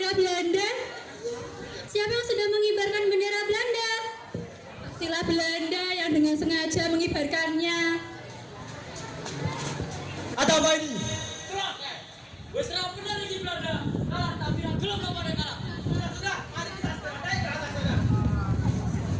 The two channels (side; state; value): both; identical; correlation 1.00